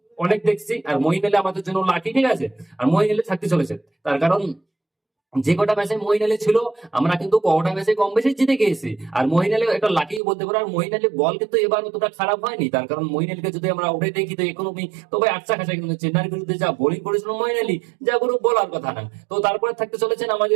অনেক দেখছি, আর মহিন আলী আমাদের জন্য লাকি। ঠিক আছে, আর মহিন আলী থাকতে চলেছে, তার কারণ যে কটা ম্যাচে মহিন আলী ছিল আমরা কিন্তু কটা ম্যাচে কম বেশি জিতে গিয়েছি। আর মহিন আলী একটা লাকি বলতে পারো। আর মহিন আলী বল কিন্তু এবার অতটা খারাপ হয়নি, তার কারণ মহিন আলীকে যদি আমরা উঠে দেখি তো ইকোনমি তো ভাই আচ্ছা খাসা, কিন্তু চেন্নাইয়ের বিরুদ্ধে যা বোলিং করেছিল মহিন আলী, যা কোনো বলার কথা না। তো তারপরে থাকতে চলেছেন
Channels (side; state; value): left; drops out; at 10.2 s